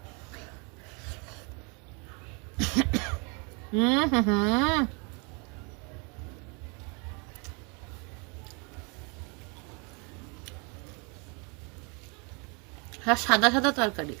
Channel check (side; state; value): left; quieter; 32.6 dB